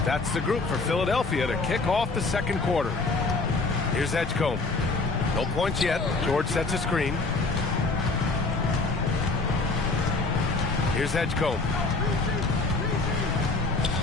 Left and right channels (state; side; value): quieter; right; 3.6 dB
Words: That's the group for Philadelphia to kick off the second quarter. Here's Edgecombe. No points yet. George sets a screen. Here's Edgecombe.